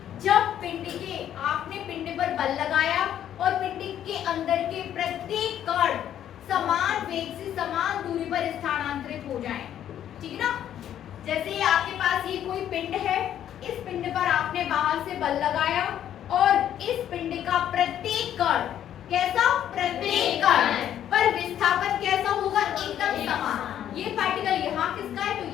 जब पिंड के आपने पिंड पर बल लगाया और पिंड के अंदर के प्रत्येक कण समान वेग से समान दूरी पर स्थानांतरित हो जाएं, ठीक ना। जैसे आपके पास ये कोई पिंड है, इस पिंड पर आपने बाहर से बल लगाया और इस पिंड का प्रत्येक कण कैसा? प्रत्येक कण पर विस्थापन कैसा होगा? एकदम समान। ये पार्टिकल यहाँ किसका है तो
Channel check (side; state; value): right; quieter; 10.6 dB